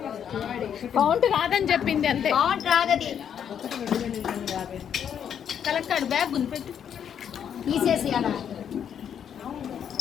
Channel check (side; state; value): right; quieter; 8.5 dB